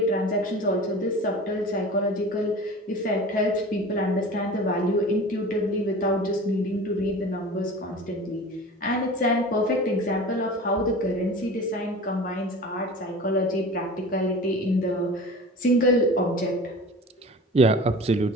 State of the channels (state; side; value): normal; both; correlation 0.37